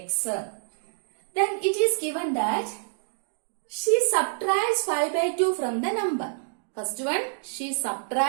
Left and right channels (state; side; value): silent; left; digital silence